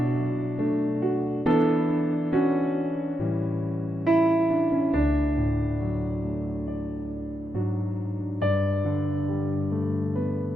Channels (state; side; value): normal; both; correlation 0.85